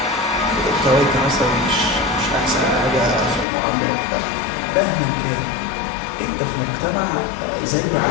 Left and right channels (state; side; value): drops out; right; at 3.5 s